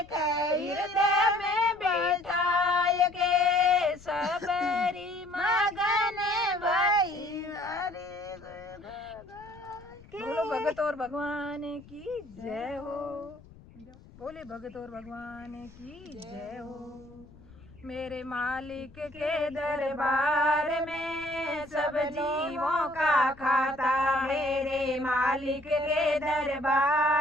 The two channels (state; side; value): noise; left; rumble, 22 dB below the sound